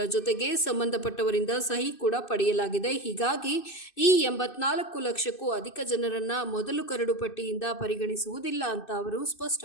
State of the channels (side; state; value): right; late; 2.6 ms